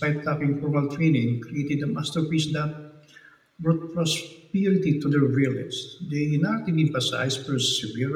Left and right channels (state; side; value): identical; both; correlation 1.00